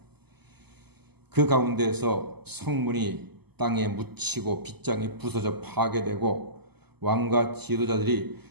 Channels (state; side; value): late; left; 0.98 ms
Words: 그 가운데서 성문이 땅에 묻히고 빗장이 부서져 파괴되고 왕과 지도자들이